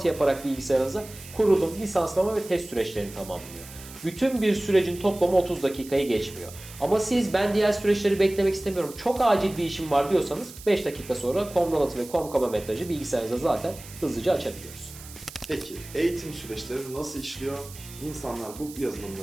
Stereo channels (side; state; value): right; noise; hiss, 17 dB below the sound